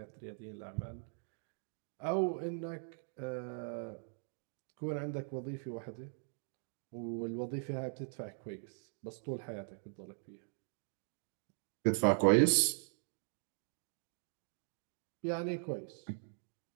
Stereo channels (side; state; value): left; silent; digital silence